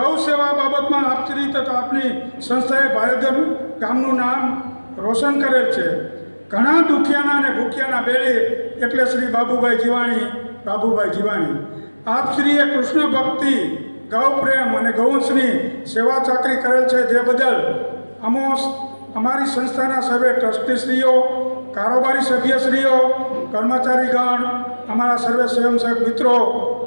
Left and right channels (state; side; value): inverted; both; correlation -1.00